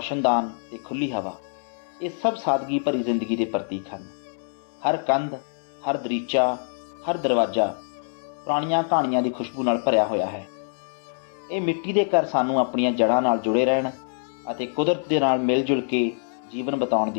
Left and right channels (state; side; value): silent; right; 62 dB below the other